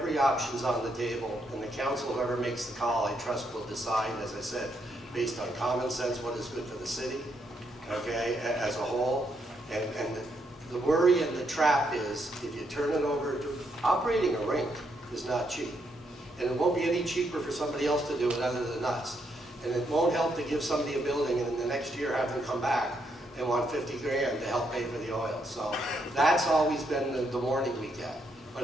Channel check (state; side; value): normal; both; correlation 0.77